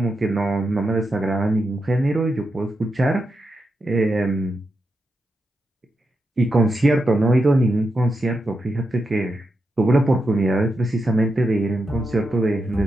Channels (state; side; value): normal; both; correlation 0.86